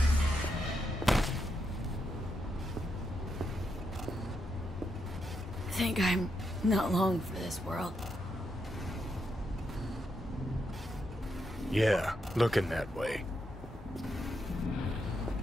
Think I'm not long for this world. Yeah, looking that way.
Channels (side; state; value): both; normal; correlation 0.82